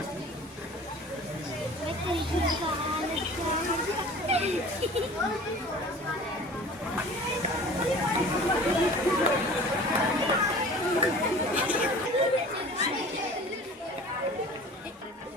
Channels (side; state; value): both; normal; correlation 0.43